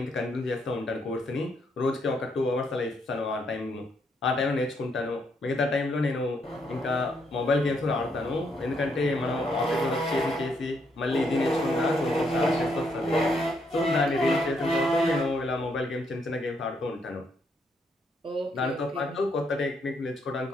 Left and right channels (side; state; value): both; normal; correlation 0.75